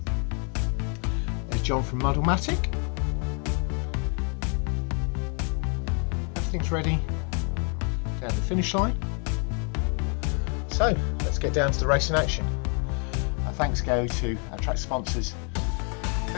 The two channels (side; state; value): right; quieter; 39.1 dB